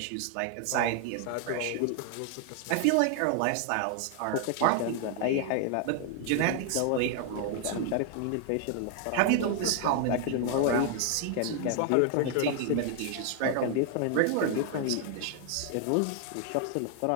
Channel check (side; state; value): both; different; correlation 0.00